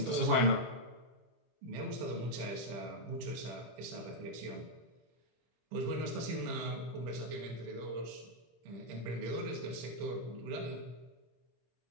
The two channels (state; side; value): late; left; 25 ms